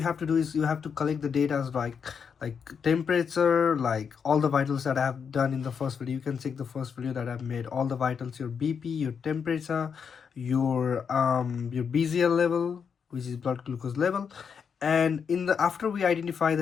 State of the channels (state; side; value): quieter; right; 6.6 dB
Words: have to do is you have to collect the data as like temperature, like all the vitals that I have done in the first video. You can check the first video that I've made, all the vitals, your BP, your temperature, your BZL level, which is blood glucose level. And in the after we identify